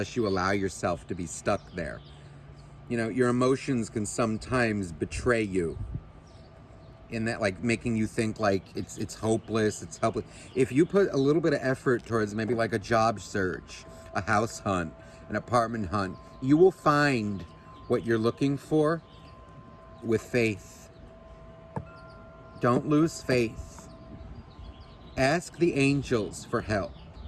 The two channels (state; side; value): identical; both; correlation 1.00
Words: you allow yourself to be stuck there. Your emotions can sometimes betray you. In that, like, making you think like it's hopeless, it's helpless. If you put a little bit of effort towards maybe like a job search, a house hunt, an apartment hunt, you will find what you're looking for with faith. Don't lose faith. Ask the angels for help.